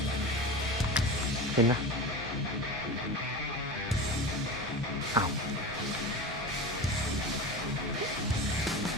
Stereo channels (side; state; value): both; normal; correlation 0.28